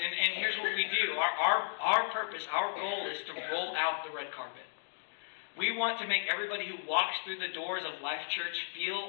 here's what we do. Our purpose, our goal is to roll out the red carpet. We want to make everybody who walks through the doors of Life Church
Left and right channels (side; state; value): right; silent; digital silence